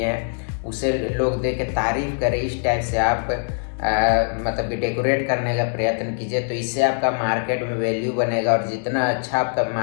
हैं, उसे लोग देख के तारीफ करें। इस टाइप से आप मतलब कि डेकोरेट करने का प्रयत्न कीजिए। तो इससे आपका मार्केट में वैल्यू बनेगा और जितना अच्छा आपका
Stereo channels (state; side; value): silent; right; digital silence